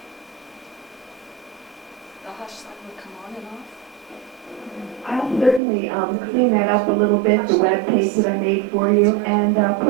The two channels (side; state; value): left; drops out; at 5.6 s